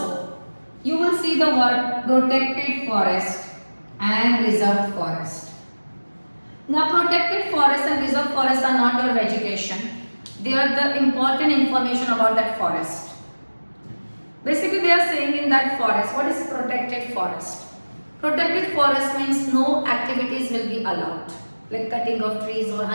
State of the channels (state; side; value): inverted; both; correlation -1.00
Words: you will see the word protected forest and reserved forest. Now, protected forest and reserved forest are not your vegetation. They are the important information about that forest. Basically, they are saying in that forest, what is protected forest? Protected forest means no activities will be allowed. Like cutting of trees or